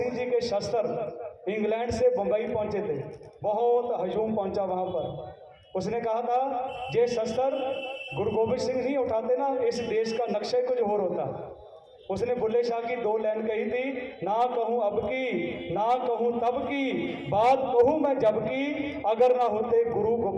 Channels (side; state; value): both; identical; correlation 1.00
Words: जी के शस्त्र इंग्लैंड से बम्बई पहुंचे थे, बहुत हजूम पहुंचा वहां पर, उसने कहा था ये शस्त्र गुरु गोबिंद सिंह नहीं उठाते ना, इस देश का नक्शा कुछ और होता। उसने बुल्ले शाह की 2 लाइन कही थी, ना कहूँ अब की ना कहूँ तब की, बात कहूँ मैं जब की, अगर ना होते गुरु